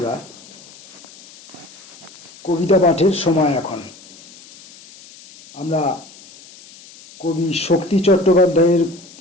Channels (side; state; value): left; noise; hiss, 21 dB below the sound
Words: কবিতা পাঠের সময় এখন। আমরা কবি শক্তি চট্টোপাধ্যায়ের